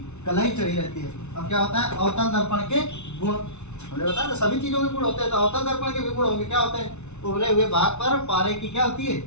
कलाई चढ़ी रहती है। अब क्या होता है, अवतल दर्पण के गुण हमने बताया, तो सभी चीजों के गुण होते हैं, तो अवतल दर्पण के भी गुण होंगे। क्या होते हैं, उभरे हुए भाग पर पारे की क्या होती है,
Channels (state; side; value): late; right; 0.82 ms